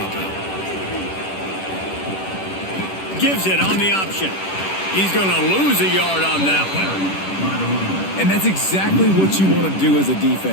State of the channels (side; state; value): right; late; 10 ms